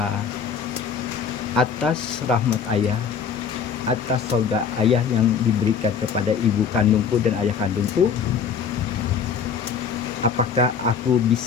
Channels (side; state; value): right; quieter; 6.6 dB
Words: atas rahmat ayah, atas surga ayah yang diberikan kepada ibu kandungku dan ayah kandungku? Apakah aku